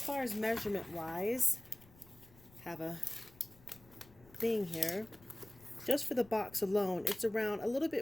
far as measurement wise, have a thing here. Just for the box alone, it's around a little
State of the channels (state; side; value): noise; left; rumble, 25 dB below the sound